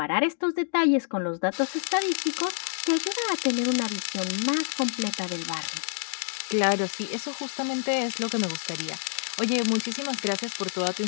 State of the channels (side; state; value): right; silent; digital silence